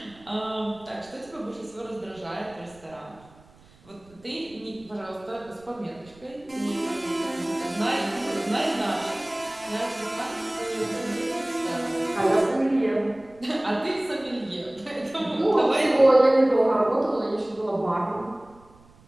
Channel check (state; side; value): noise; right; rumble, 27 dB below the sound